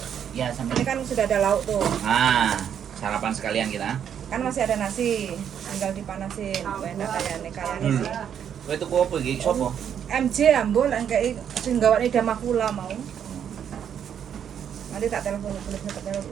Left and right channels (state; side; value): quieter; left; 8.7 dB